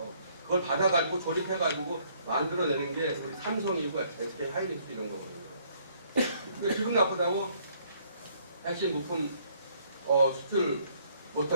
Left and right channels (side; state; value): both; inverted; correlation -0.65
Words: 그걸 받아가지고 조립해가지고 만들어내는 게 우리 삼성이고 SK 하이닉스 이런 거거든요. 근데 기분 나쁘다고 핵심 부품 수출